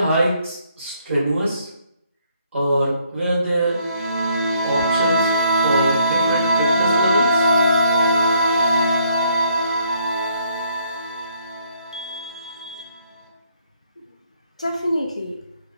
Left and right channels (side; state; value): both; inverted; correlation -0.68